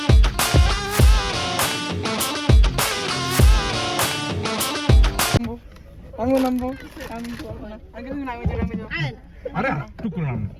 আমিও নামবো। আমি বলবো না। আগে তুমি নামে যাও। আরে টুকুর নাম।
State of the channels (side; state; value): both; identical; correlation 1.00